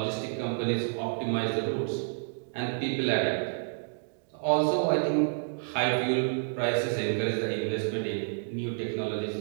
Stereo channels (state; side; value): silent; left; digital silence